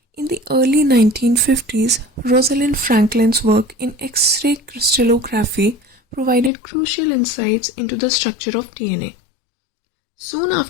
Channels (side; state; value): right; drops out; at 6.5 s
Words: in the early 1950s, Rosalind Franklin's work in X-ray crystallography provided crucial insights into the structure of DNA. Soon